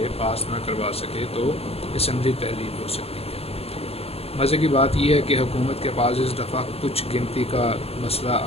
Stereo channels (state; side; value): late; right; 0.29 ms